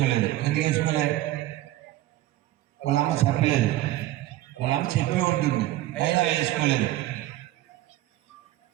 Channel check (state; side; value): quieter; left; 15.3 dB